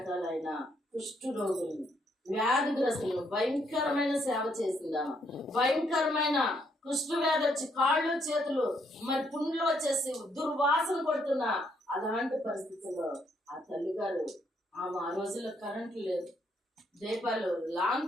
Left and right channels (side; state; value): both; normal; correlation 0.73